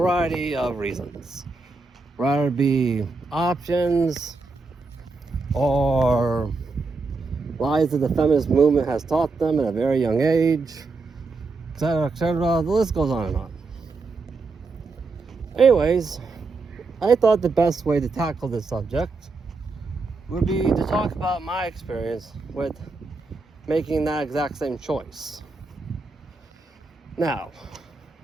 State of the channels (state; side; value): quieter; left; 3.9 dB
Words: of reasons. Rather be options or lies that the feminist movement has taught them at a very young age, etc., etc. The list goes on and on. Anyways, I thought the best way to tackle this subject would be to talk about my experience with making that exact same choice. Now,